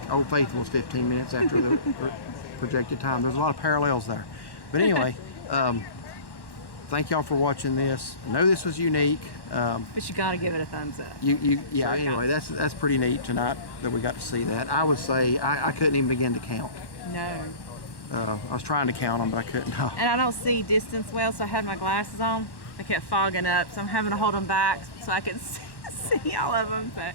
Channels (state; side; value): late; right; 1.1 ms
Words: Old Faithful was 15 minutes after the projected time. There's a lot of parallels there. But anyway, thank y'all for watching this. I know this was unique. But you got to give it a thumbs up. Yeah. Anyway, that's pretty neat tonight that we got to see that. I would say I couldn't even begin to count. No. I was trying to count them, but I couldn't. And I don't see distance well, so I had my glasses on. I kept fogging up, so I'm having to hold them back so I can see all of them. But